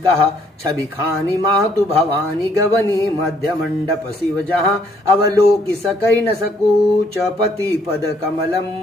छवि खानी मातु भवानी गवनी मध्य मंडप शिव जहाँ अवलोकि सकई न सकूच पति पद कमलम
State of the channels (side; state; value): both; normal; correlation 0.66